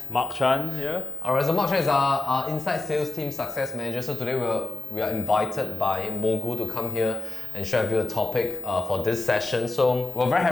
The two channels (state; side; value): quieter; right; 3.1 dB